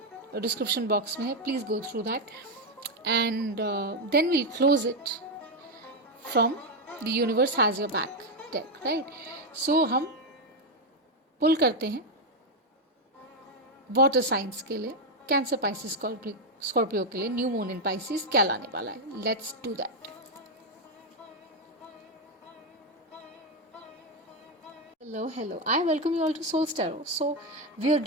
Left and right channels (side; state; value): both; normal; correlation 0.05